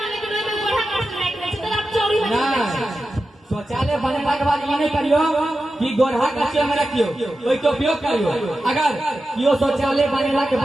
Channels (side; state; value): both; normal; correlation 0.92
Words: शौचालय बनेला के बाद ये नहीं करियो कि गोरहा कच्चे में रखियो कोई के उपयोग करियो अगर कियो शौचालय बनेला के